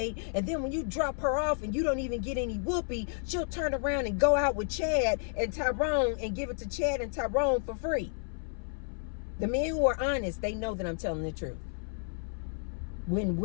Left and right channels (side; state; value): right; silent; 57 dB below the other